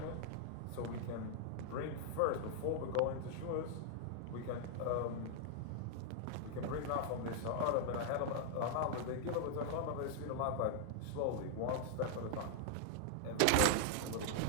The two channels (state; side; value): different; both; correlation 0.00